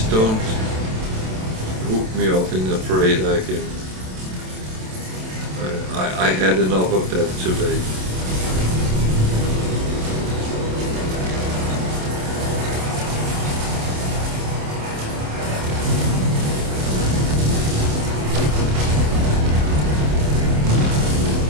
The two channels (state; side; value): late; left; 27 ms